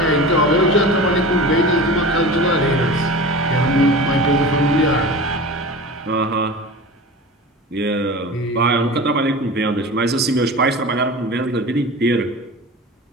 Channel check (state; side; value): normal; both; correlation 0.33